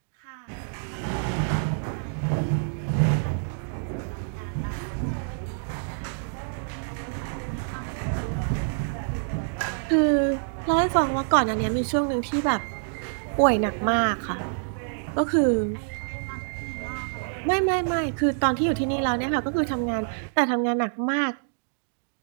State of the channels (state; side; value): silent; left; digital silence